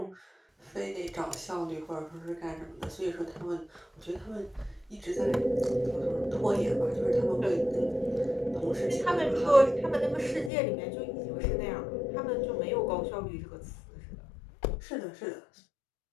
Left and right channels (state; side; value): drops out; right; at 10.5 s